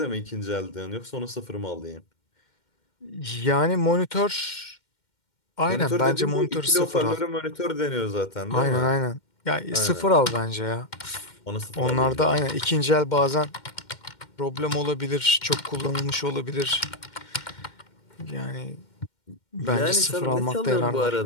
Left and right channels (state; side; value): late; right; 2.1 ms